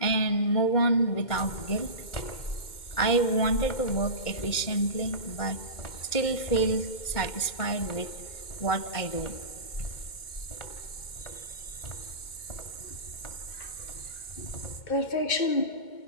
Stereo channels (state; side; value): late; right; 2.2 ms